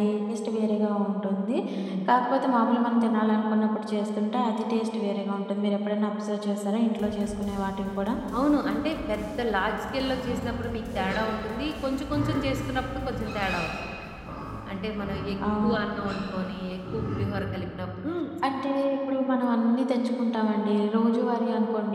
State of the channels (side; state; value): both; identical; correlation 1.00